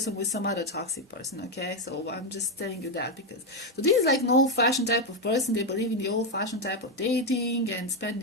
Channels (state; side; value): normal; both; correlation 0.05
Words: with some other toxic person. Okay, so I'm just telling you that, because so this is like an old-fashioned type of person. They believe in the old-fashioned type of dating and